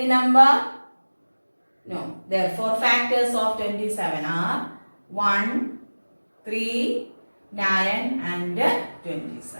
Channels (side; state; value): both; inverted; correlation -1.00